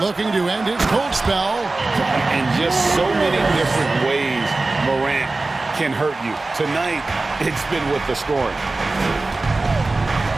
to end his cold spell. In just so many different ways, Morant can hurt you. Tonight, it's been with the scoring.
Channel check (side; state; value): left; quieter; 3.3 dB